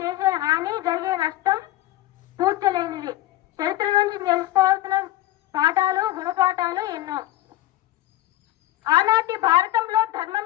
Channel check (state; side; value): quieter; right; 15.4 dB